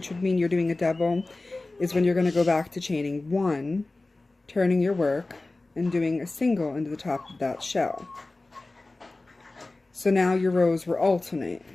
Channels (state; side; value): quieter; right; 3.1 dB